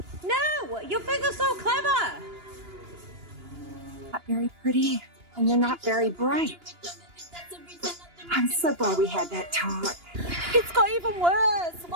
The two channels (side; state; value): left; late; 2.9 ms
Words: No! Your finger's so clever! Not very pretty, and you're not very bright. I'm so glad we had that talk. It's got even worse!